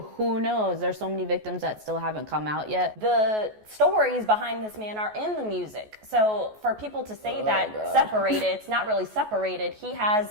Who knows? There's so many victims that still haven't come out yet. The stories behind this man are in the music. So for people to say separated, it's not really separated. He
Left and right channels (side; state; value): left; late; 14 ms